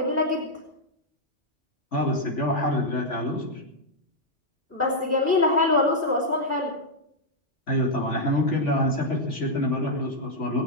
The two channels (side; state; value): both; normal; correlation -0.03